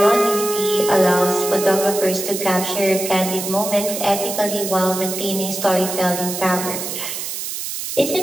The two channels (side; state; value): right; noise; hiss, 6 dB below the sound